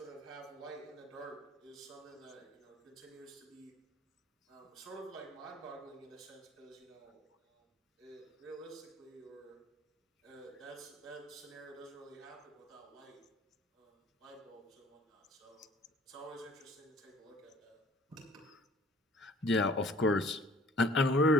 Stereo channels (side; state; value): both; normal; correlation 0.54